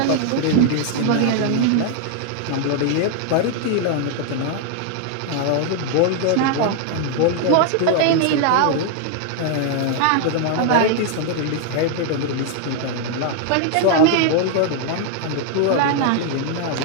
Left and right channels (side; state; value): both; different; correlation 0.00